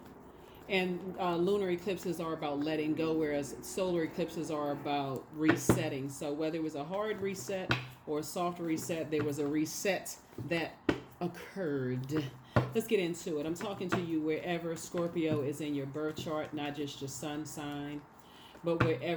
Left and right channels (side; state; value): both; identical; correlation 1.00